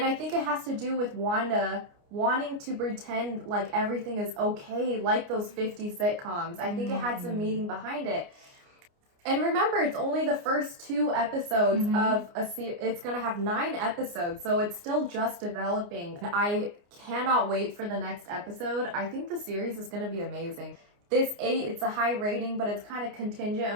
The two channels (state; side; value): late; left; 29 ms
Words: I think it has to do with Wanda wanting to pretend like everything is okay, like those 50 sitcoms. I think it had some meaning behind it. And remember, it's only the first 2 episodes of a series. It's going to have 9 episodes, so it's still just developing. I cannot wait for the next episode. I think the series is going to be amazing. This 8, it's a high rating, but it's kind of contingent